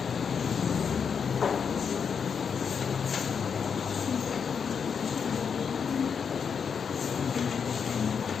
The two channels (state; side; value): quieter; right; 6.6 dB